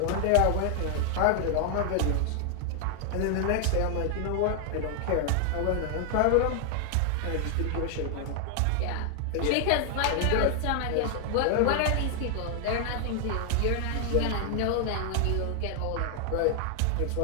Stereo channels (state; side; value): different; both; correlation 0.00